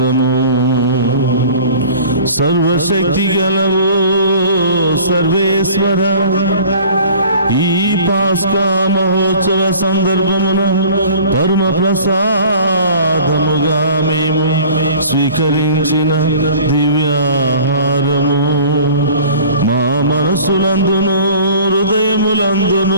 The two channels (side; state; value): both; inverted; correlation -0.46